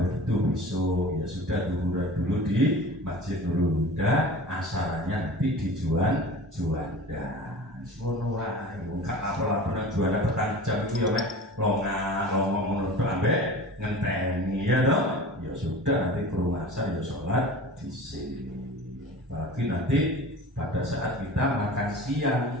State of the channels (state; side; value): normal; both; correlation 0.37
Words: besok ya sudah zuhur dulu di Masjid Nurul Huda, asarannya nanti di Juanda. Ngono wae, gak apa-apa juara petang jam itu ya mek ngomong menurut ambek ngenteni ya toh. Ya sudah nanti kerumasan ya sholat di sini. Bagi nanti pada saat kita makan siang